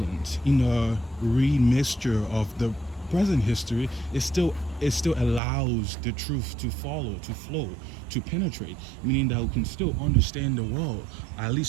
in a remixture of the present history, it still allows the truth to follow, to flow, to penetrate, meaning that we can still understand the world, at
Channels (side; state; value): left; drops out; at 5.4 s